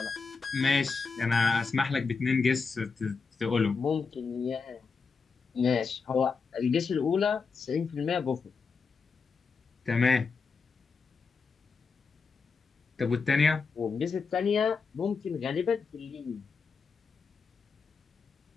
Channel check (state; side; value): quieter; right; 5.0 dB